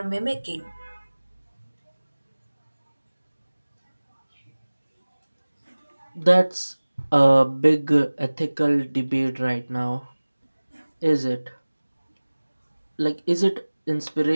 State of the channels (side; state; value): both; inverted; correlation -1.00